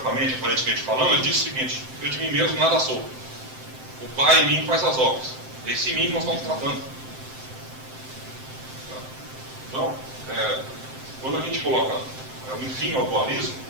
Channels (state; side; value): late; left; 7.7 ms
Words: mente, aparentemente falando, ele disse o seguinte: eu de mim mesmo nada sou, o Pai em mim faz as obras. Esse em mim nós estamos tratando. Então, quando a gente coloca um fim ao dualismo,